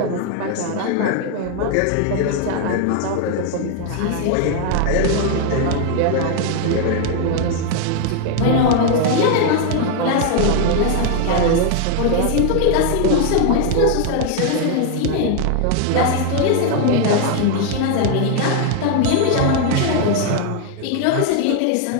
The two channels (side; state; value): both; different; correlation 0.01